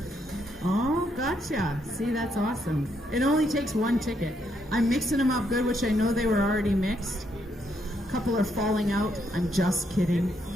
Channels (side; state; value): both; normal; correlation 0.76